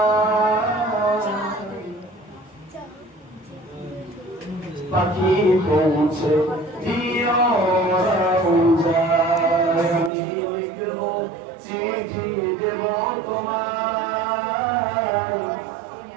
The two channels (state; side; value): drops out; left; at 10.1 s